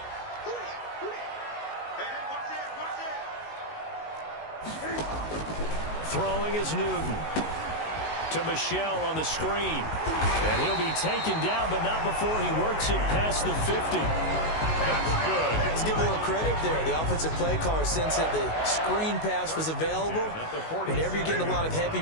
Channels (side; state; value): right; late; 19 ms